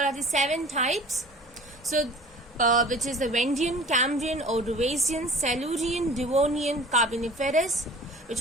the seven types. So which is the Vendian, Cambrian, Ordovician, Silurian, Devonian, Carboniferous,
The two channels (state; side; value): normal; both; correlation 0.45